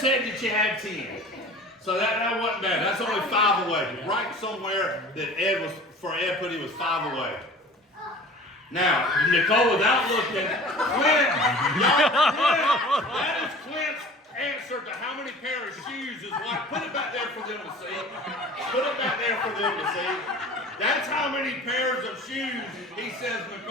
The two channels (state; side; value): normal; both; correlation 0.42